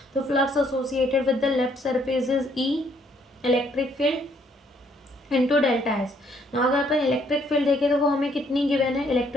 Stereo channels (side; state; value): both; normal; correlation 0.67